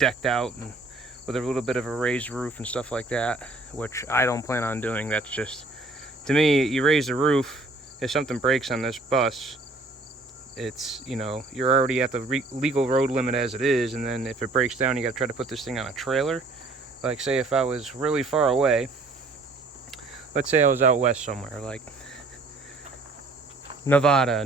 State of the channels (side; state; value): left; quieter; 3.2 dB